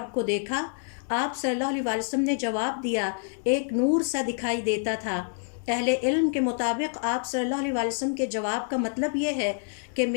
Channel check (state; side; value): silent; right; 60 dB below the other